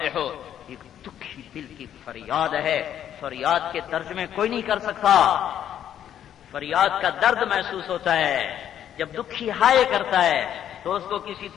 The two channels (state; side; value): quieter; right; 10.2 dB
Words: ایک دکھی دل کی فریاد ہے، فریاد کے ترجمے کوئی نہیں کر سکتا. فریاد کا درد محسوس ہوتا ہے جب دکھی ہائے کرتا ہے تو اس کو کسی